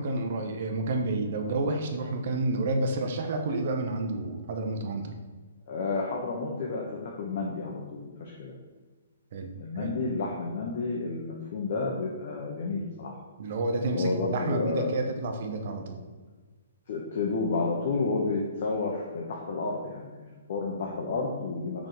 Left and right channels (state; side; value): inverted; both; correlation -0.53